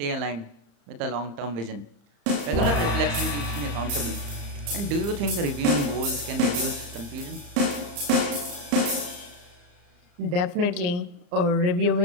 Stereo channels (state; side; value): late; left; 34 ms